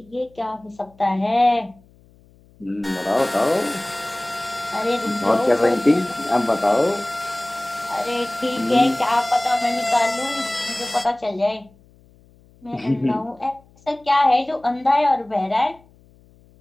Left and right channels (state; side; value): noise; left; hum, 29 dB below the sound